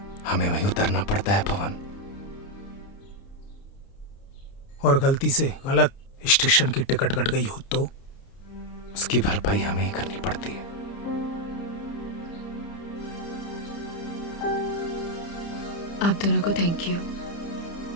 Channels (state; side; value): late; right; 30 ms